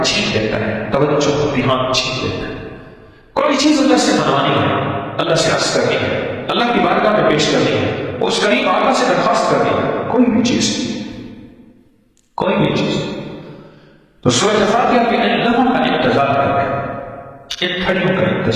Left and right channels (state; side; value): identical; both; correlation 1.00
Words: چھین لیتا ہے، توجہ دھیان چھین لیتا ہے۔ کوئی چیز اللہ سے منوانی ہے، اللہ سے عرض کرنی ہے، اللہ کی بارگاہ میں پیش کرنی ہے، اس قریب آقا سے درخواست کرنی ہے، کوئی بھی چیز، کوئی بھی چیز، تو سورۃ فاتحہ کے ان لمحوں کا انتظار کریں، ان گھڑیوں کا